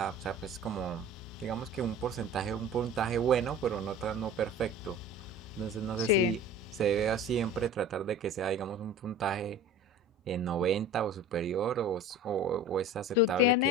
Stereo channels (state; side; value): normal; both; correlation 0.39